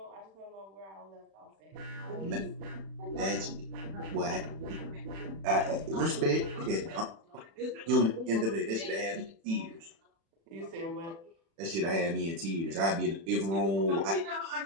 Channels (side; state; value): left; late; 36 ms